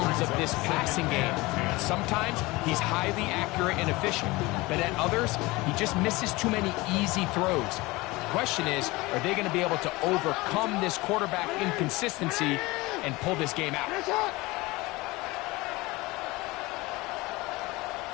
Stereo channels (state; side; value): quieter; right; 21.9 dB